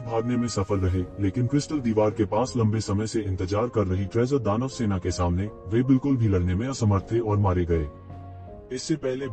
भागने में सफल रहे, लेकिन क्रिस्टल दीवार के पास लंबे समय से इंतजार कर रही ट्रेजर दानव सेना के सामने वे बिल्कुल भी लड़ने में असमर्थ थे और मारे गए। इससे पहले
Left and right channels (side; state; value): both; identical; correlation 1.00